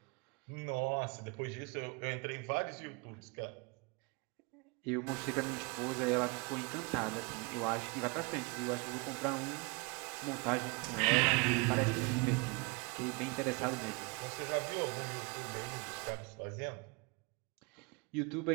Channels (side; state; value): left; quieter; 29.7 dB